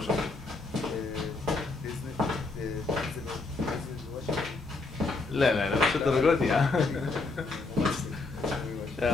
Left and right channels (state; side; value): quieter; right; 3.6 dB